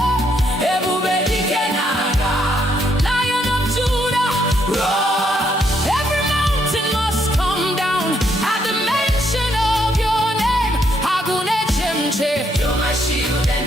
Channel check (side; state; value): both; normal; correlation 0.73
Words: Ebube dike naga, Lion of Judah, roar. Every mountain must come down at the mention of your name. Agune chemche, you're my shield and